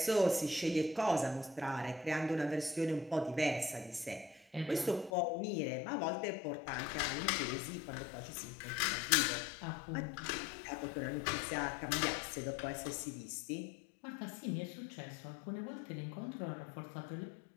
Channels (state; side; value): drops out; right; at 5.1 s